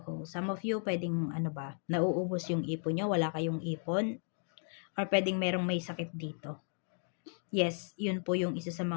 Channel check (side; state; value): right; silent; 54 dB below the other